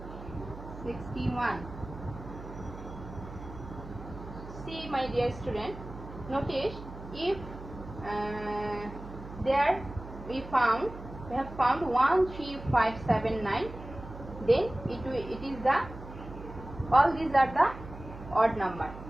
61. See, my dear student, notice if there we have found 1, 3, 5, 7, 9, then it is the, all these are the odd number.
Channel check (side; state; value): right; noise; hum, 13 dB below the sound